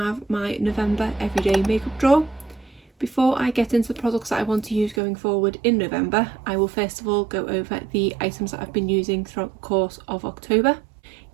my November everyday makeup drawer. Before I get into the products that I want to use going forward in November, I will first of all go over the items that I've been using throughout the course of October,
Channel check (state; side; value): drops out; left; at 5.0 s